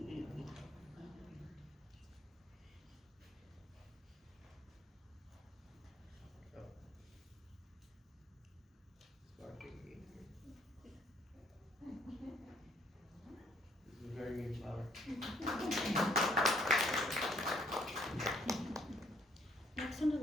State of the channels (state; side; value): normal; both; correlation 0.65